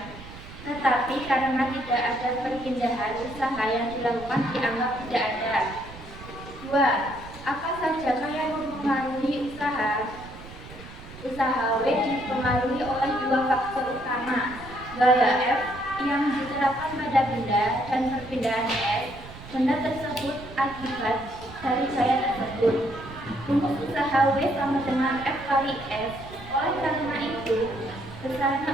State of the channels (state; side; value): noise; right; rumble, 16 dB below the sound